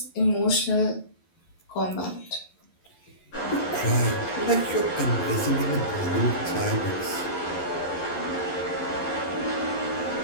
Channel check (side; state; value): right; late; 11 ms